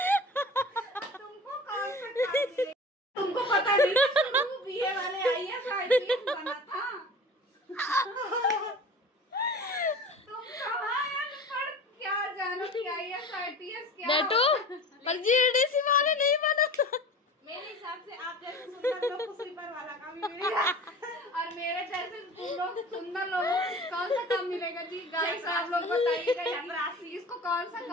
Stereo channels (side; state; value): both; normal; correlation 0.38